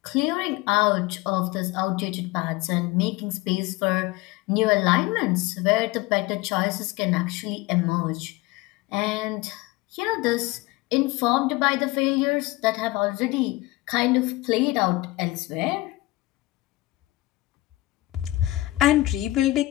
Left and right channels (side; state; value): right; quieter; 19.2 dB